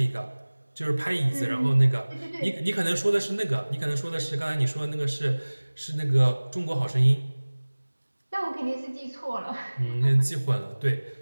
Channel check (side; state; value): both; inverted; correlation -1.00